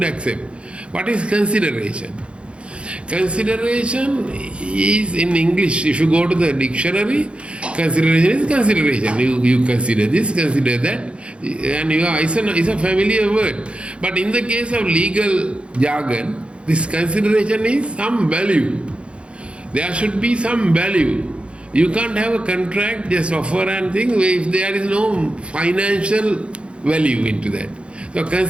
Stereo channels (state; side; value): late; left; 0.058 ms